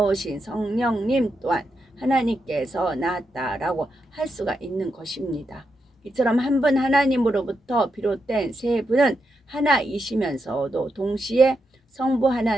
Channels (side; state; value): both; normal; correlation 0.84